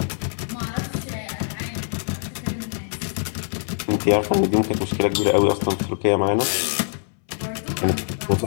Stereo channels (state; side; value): silent; right; 63 dB below the other